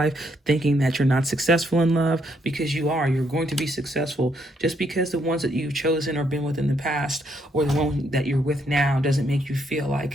thinking that you're not successful in love, because you are. You're going to be successful. Just because the ones that you've chosen or been with in the past or the one that you're with now doesn't make you feel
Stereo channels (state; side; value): normal; both; correlation 0.74